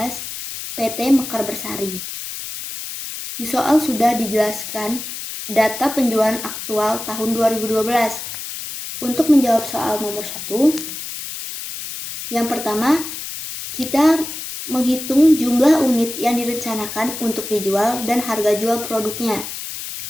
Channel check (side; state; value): left; noise; hiss, 8 dB below the sound